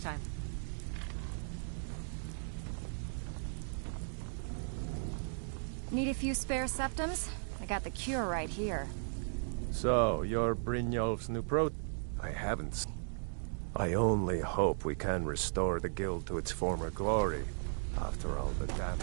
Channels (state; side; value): silent; left; digital silence